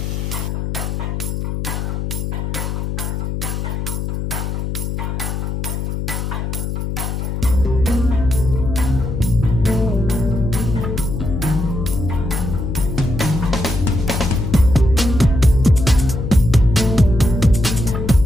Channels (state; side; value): noise; left; hum, 3 dB below the sound